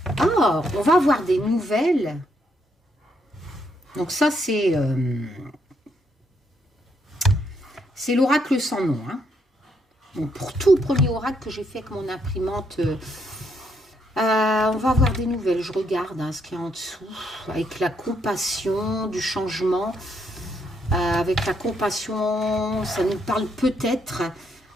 Ah, on va avoir des nouvelles. Donc ça, c'est l'oracle sans nom. Hein. Donc pour tout premier oracle que j'ai fait avec mon imprimante, on va avoir des nouvelles. Je regarde hein, ce qu'il y a en dessous. Avec la compassion du changement. Avec la compassion, ça nous parle peut-être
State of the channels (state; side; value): normal; both; correlation 0.75